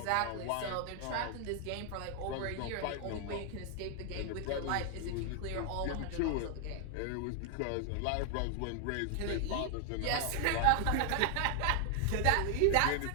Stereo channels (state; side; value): different; both; correlation 0.00